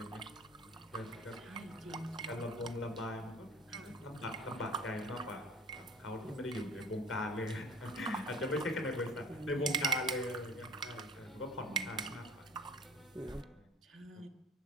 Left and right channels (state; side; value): normal; both; correlation 0.42